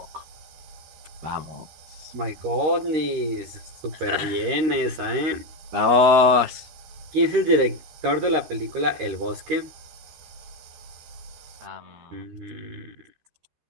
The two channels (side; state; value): left; late; 13 ms